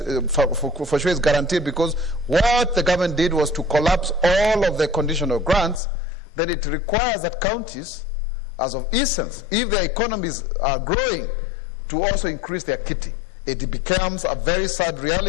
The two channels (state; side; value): drops out; right; at 5.8 s